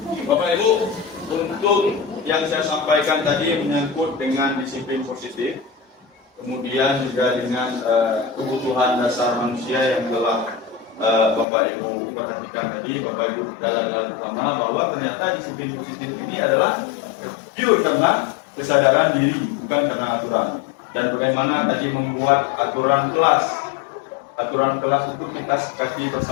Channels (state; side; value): drops out; right; at 11.5 s